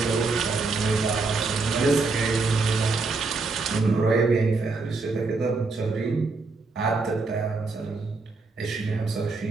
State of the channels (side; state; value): left; quieter; 3.9 dB